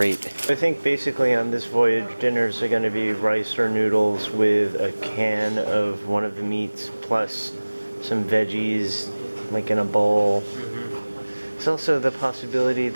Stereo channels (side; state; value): both; inverted; correlation -1.00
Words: I think basically on this voyage, dinners are going to be rice or noodles with a can of one of the meats plus some veggies, like in a bowl. There's also the possibility